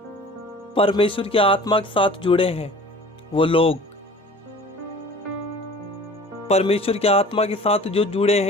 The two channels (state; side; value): normal; both; correlation 0.45